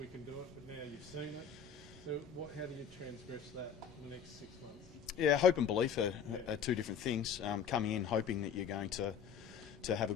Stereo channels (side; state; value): right; quieter; 7.2 dB